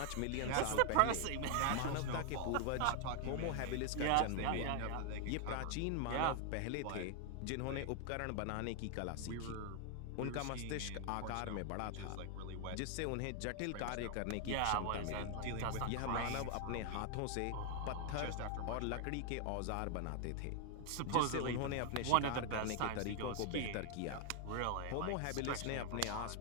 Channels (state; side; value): different; both; correlation 0.00